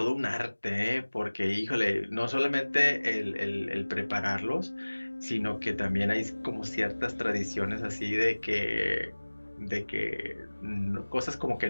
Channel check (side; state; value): both; inverted; correlation -1.00